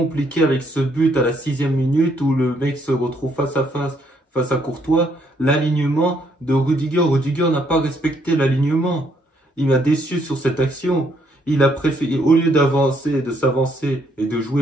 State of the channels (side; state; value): both; normal; correlation 0.71